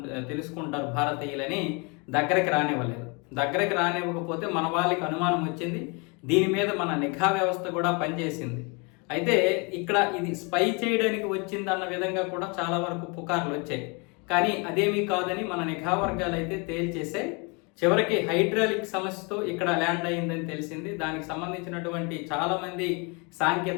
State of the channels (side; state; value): right; quieter; 31.4 dB